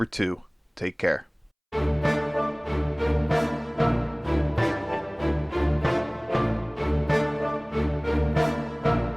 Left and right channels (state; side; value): identical; both; correlation 1.00